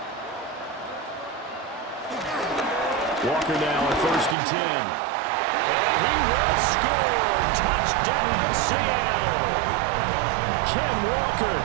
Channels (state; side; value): drops out; left; at 4.4 s